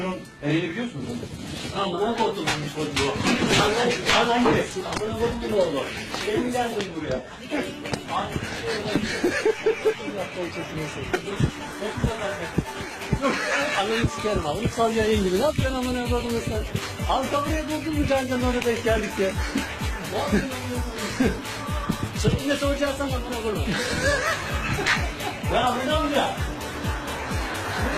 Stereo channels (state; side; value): identical; both; correlation 1.00